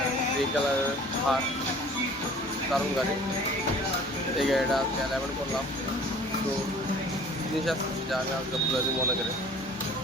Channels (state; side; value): normal; both; correlation 0.48